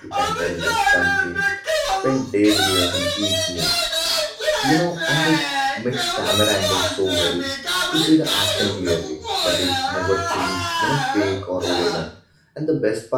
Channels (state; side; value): identical; both; correlation 1.00